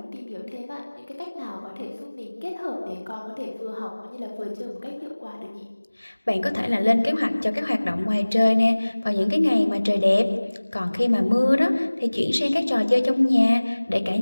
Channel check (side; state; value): both; inverted; correlation -1.00